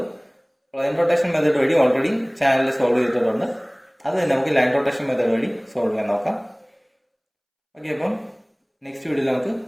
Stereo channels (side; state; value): both; identical; correlation 1.00